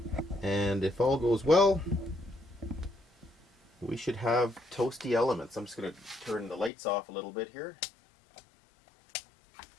And if all goes well, we should have toasty elements. I'm just going to turn the lights off a little bit here.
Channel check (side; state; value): right; drops out; at 6.7 s